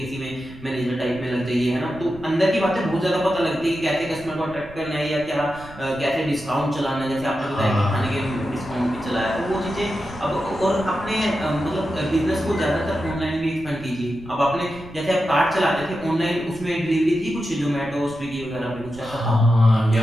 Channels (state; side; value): noise; right; rumble, 18 dB below the sound